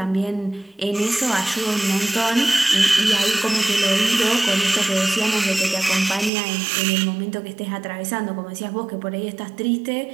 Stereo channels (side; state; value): left; drops out; at 6.3 s